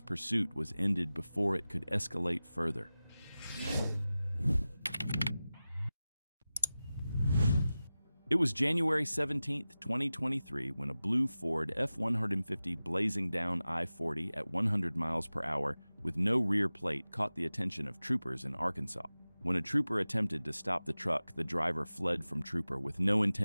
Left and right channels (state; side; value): inverted; both; correlation -0.96